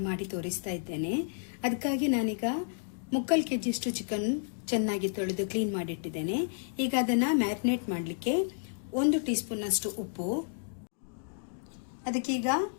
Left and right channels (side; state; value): right; silent; digital silence